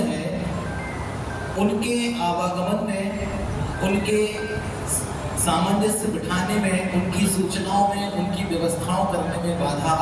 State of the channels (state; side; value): identical; both; correlation 1.00